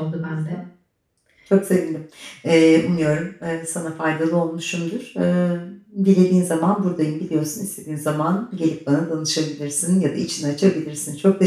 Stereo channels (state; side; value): identical; both; correlation 1.00